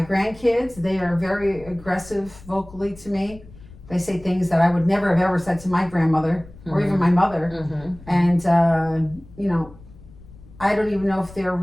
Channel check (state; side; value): noise; left; rumble, 20 dB below the sound